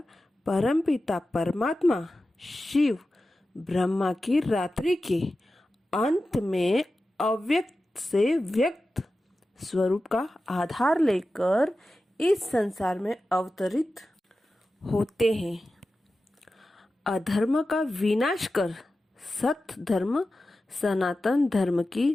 परमपिता परमात्मा शिव ब्रह्मा की रात्रि के अंत में अव्यक्त से व्यक्त स्वरूप का आधार लेकर इस संसार में अवतरित होते हैं। अधर्म का विनाश कर सत्य धर्म सनातन धर्म की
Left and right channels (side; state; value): both; normal; correlation 0.93